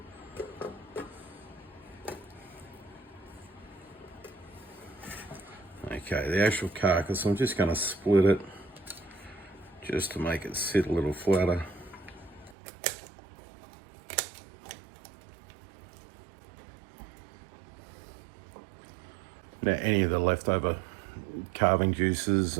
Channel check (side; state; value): left; drops out; at 12.6 s